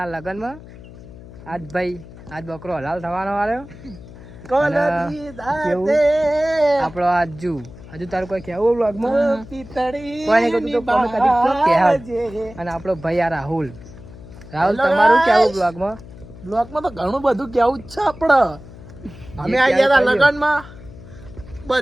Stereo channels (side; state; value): left; noise; hum, 17 dB below the sound